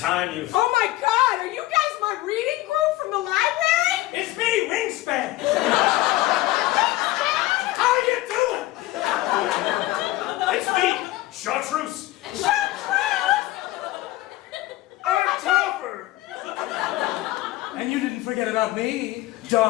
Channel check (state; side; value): quieter; right; 17.2 dB